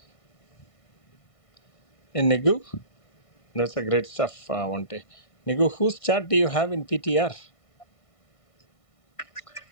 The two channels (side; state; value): right; late; 1.6 ms